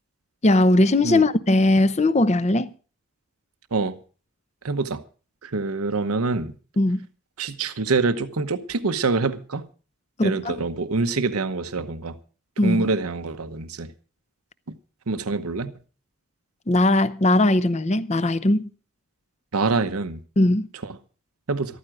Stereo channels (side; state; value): both; normal; correlation 0.53